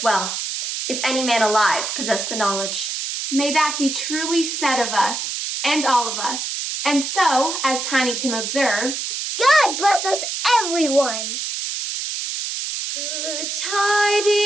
well, if any man alive possessed the knowledge. May that be truly said of us, and all of us. And so, as Tiny Tim observed, God bless us, everyone! Good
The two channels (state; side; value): noise; right; hiss, 4 dB below the sound